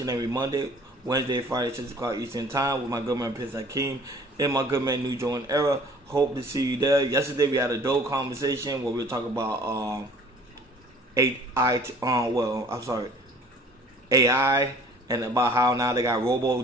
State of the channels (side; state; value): both; normal; correlation 0.51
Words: and every Monday, Wednesday, Friday, 6 o'clock Eastern Time with my good man Prince Hakeem and my good man New Jordan Era. Hope to see you there. Yesterday we had a dope conversation where we were talking about AI and about how now they got